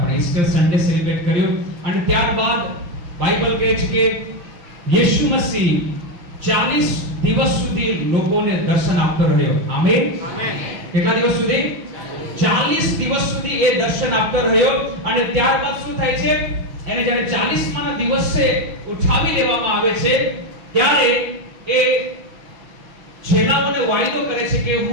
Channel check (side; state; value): left; late; 5.7 ms